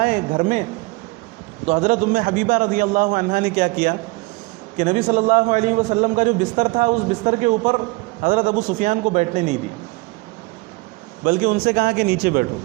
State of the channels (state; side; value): quieter; left; 25.0 dB